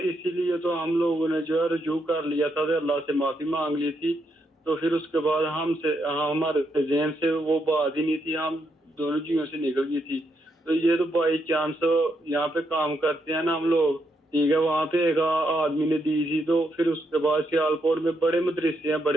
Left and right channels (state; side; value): normal; both; correlation 0.79